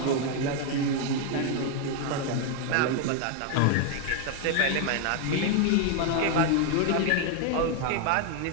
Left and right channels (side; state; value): both; different; correlation 0.00